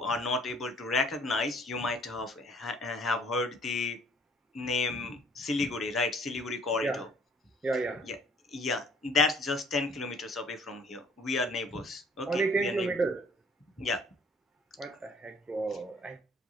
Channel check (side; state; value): both; normal; correlation 0.57